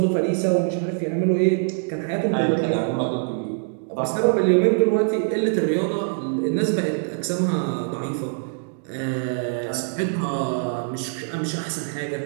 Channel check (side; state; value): left; silent; digital silence